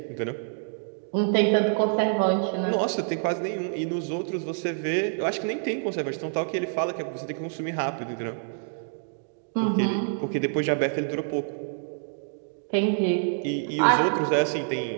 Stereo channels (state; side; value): silent; left; digital silence